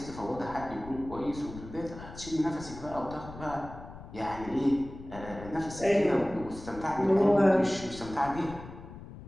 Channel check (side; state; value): left; noise; rumble, 14 dB below the sound